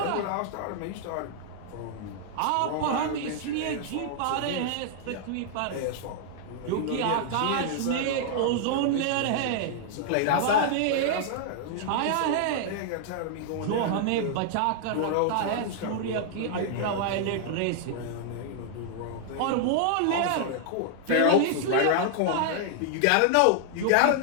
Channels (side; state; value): both; different; correlation -0.01